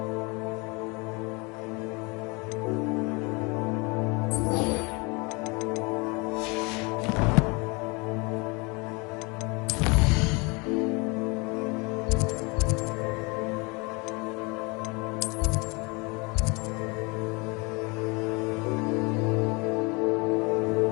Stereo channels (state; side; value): quieter; right; 28.5 dB